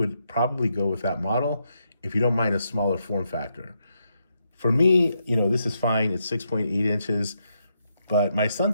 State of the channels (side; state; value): both; inverted; correlation -0.80